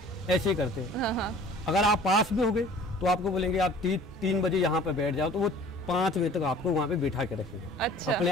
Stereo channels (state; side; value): normal; both; correlation 0.48